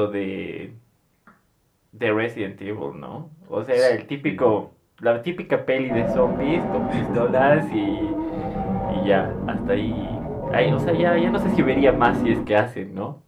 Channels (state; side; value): identical; both; correlation 1.00